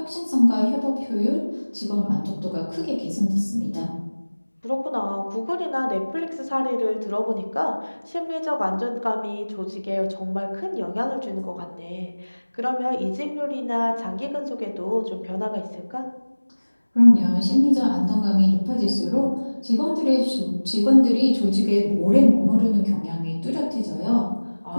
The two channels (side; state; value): both; inverted; correlation -1.00